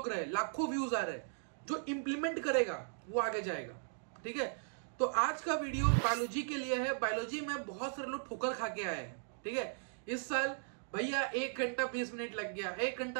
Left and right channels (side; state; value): left; silent; digital silence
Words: रहे, लाखों व्यूज आ रहे, जो इंप्लीमेंट करेगा वो आगे जाएगा। ठीक है, तो आज का वीडियो बायोलॉजी के लिए है। बायोलॉजी में बहुत सारे लोग ठोकर खा के आए हैं। ठीक है, इस साल भैया 1 घंटा 20 मिनट लग गया, 1